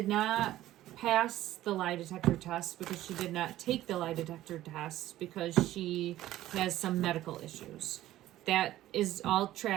not pass the lie detector test because she did not take the lie detector test because she has some medical issues. That is all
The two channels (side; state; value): left; quieter; 14.5 dB